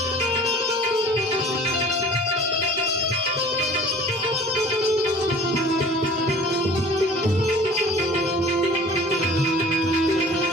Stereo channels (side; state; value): both; normal; correlation 0.46